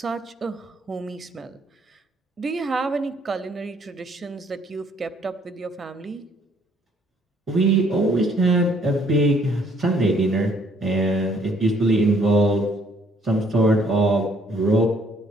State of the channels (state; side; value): normal; both; correlation 0.64